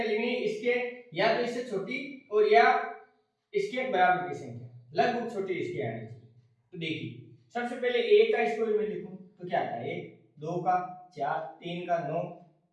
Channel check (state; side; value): identical; both; correlation 1.00